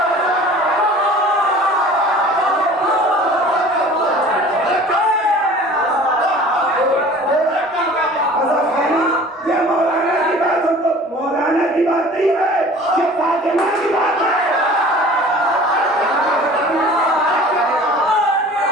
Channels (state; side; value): normal; both; correlation 0.45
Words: ये मौलाना की बात हो तो मौलाना की बात नहीं है, ये फातिमा की बात है।